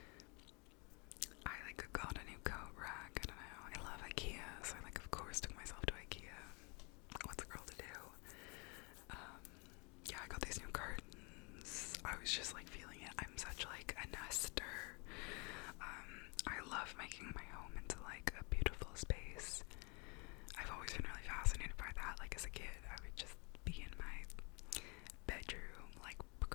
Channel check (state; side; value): quieter; right; 31.6 dB